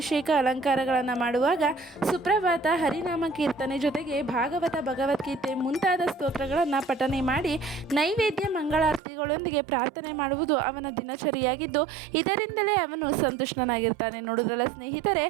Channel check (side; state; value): left; drops out; at 9.0 s